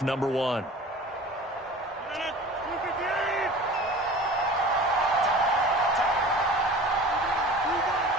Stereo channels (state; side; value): normal; both; correlation 0.40